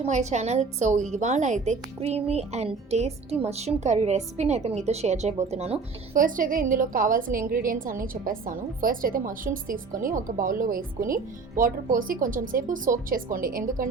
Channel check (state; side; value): quieter; left; 4.6 dB